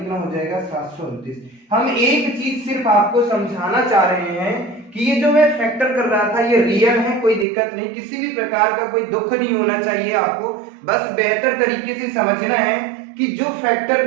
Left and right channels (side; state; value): left; drops out; at 7.5 s